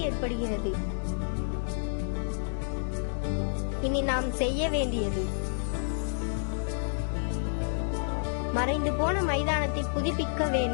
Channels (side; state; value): right; silent; digital silence